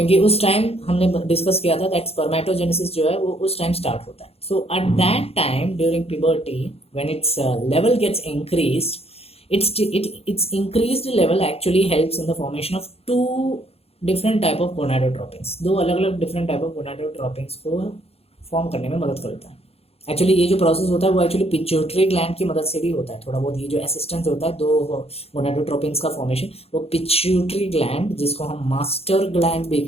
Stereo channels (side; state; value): right; late; 0.29 ms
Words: उस टाइम हमने डिस्कस किया था दैट स्पर्मेटोजेनेसिस जो है वो उस टाइम स्टार्ट होता है. So at that time during puberty when its level gets increased, its increased level actually helps in the formation of two different type of gonadotropins. दो अलग अलग different type of gonadotropins को फॉर्म करने में मदद करता है. एक्चुअली ये जो प्रोसेस होता है वो एक्चुअली पिट्यूटरी ग्लैंड की मदद से भी होता है थोड़ा बहुत. ये जो असिस्टेंस होता है दो गोनाडोट्रोपिन्स का फॉर्मेशन, वो पिट्यूटरी ग्लैंड, जिसको हम मास्टर ग्लैंड भी